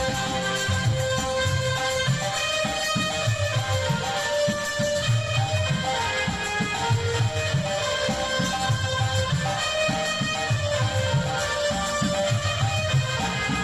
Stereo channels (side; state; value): both; identical; correlation 1.00